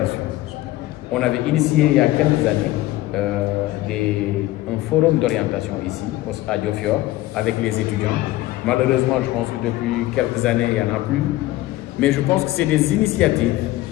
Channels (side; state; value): right; quieter; 16.6 dB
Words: On avait initié il y a quelques années un forum d'orientation ici, à Diofior, avec les étudiants. Malheureusement, je pense que depuis quelques années, il n'y en a plus. Mais je pense que c'est des initiatives